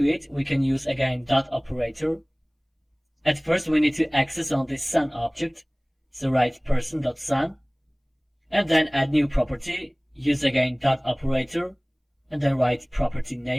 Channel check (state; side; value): identical; both; correlation 1.00